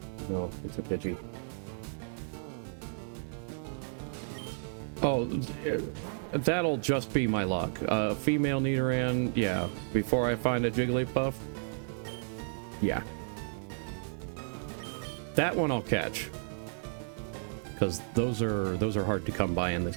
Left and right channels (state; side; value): silent; left; 56 dB below the other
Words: No, it's a Pidgey. Oh, that'll just be my luck. Female Nidoran, yeah. Before I find a Jigglypuff, yeah. That one I'll catch. Because those are hard to come by in this